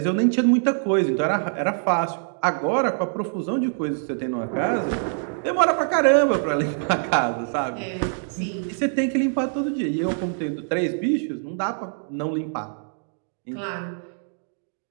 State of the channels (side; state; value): left; silent; digital silence